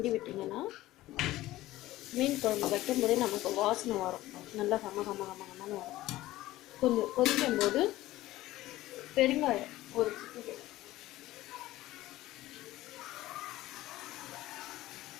விட்டிங்கன்னா மீன் குழம்பு வைக்கும்போதே நமக்கு வாசனை வரும், நல்லா கம கம கம கமன்னு வரும். கொஞ்சம் கொதிக்கும் போது பெருங்காயம் ஒரு சிட்டிகை,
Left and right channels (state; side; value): quieter; right; 16.4 dB